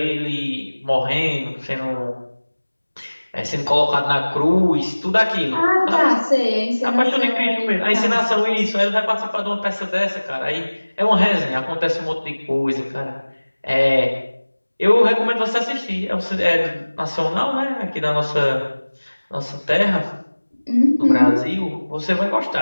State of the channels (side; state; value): both; inverted; correlation -1.00